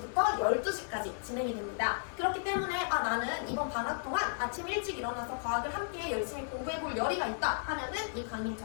12시까지 진행이 됩니다. 그렇기 때문에 나는 이번 방학 동안 아침 일찍 일어나서 과학을 함께 열심히 공부해볼 열의가 있다 하면은 이 강의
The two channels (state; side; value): silent; right; 55 dB below the other